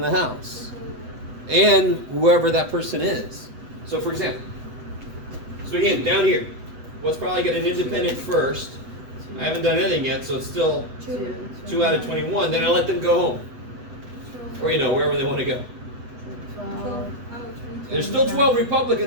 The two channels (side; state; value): left; late; 8.1 ms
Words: the house. And whoever that person is. So for example, so again, down here, what's probably got an independent first? I haven't done anything yet, so it's still 2 out of 21. Then I let them go home. Or, wherever they want to go. 12 out of 20. There's still 12